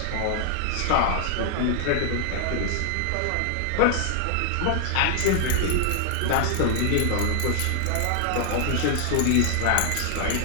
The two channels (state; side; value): different; both; correlation 0.00